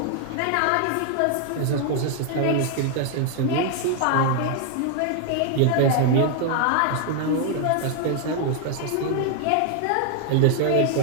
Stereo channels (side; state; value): both; different; correlation 0.00